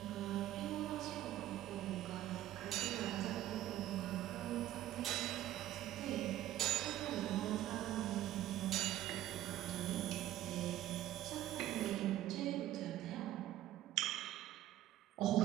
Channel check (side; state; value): left; quieter; 13.6 dB